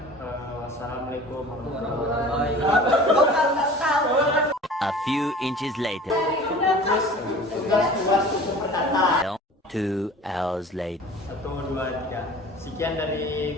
Wassalamualaikum warahmatullahi wabarakatuh. A few inches later. Tugas berkata. 2 hours later. 1, 2, 3. Sekian dari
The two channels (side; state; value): both; normal; correlation 0.42